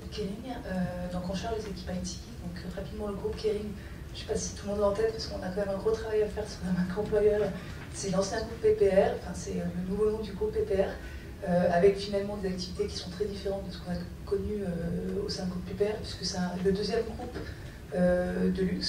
Kering, donc on charge les équipes IT. Donc rapidement le groupe Kering, je ne sais pas si tout le monde l'a en tête, parce qu'on a quand même un gros travail à faire sur la marque employeur. C'est l'ancien groupe PPR, enfin c'est le nouveau nom du groupe PPR, avec finalement des activités qui sont très différentes de ce qu'on a connu au sein du groupe PPR, puisque c'est le deuxième groupe de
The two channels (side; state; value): both; identical; correlation 1.00